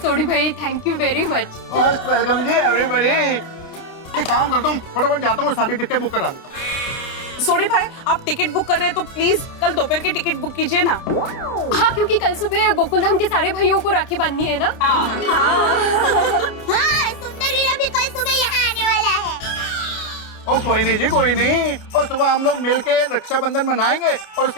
सोडी भाई, thank you very much. Most welcome ji everybody. एक काम करता हूँ, फटाफट जाता हूँ, सारी टिकटें बुक करा देता हूँ। सोडी भाई, आप टिकट बुक कर रहे हैं तो प्लीज कल दोपहर की टिकट बुक कीजिए ना। हाँ, क्योंकि कल सुबह गोकुलधाम के सारे भाइयों को राखी बांधनी है ना। हाँ, सुंदर वीरा भी कल सुबह यहाँ आने वाला है। ओ कोई नहीं जी, कोई नहीं। और सुबह हम लोग मिलके रक्षाबंधन मनाएंगे और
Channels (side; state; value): right; late; 29 ms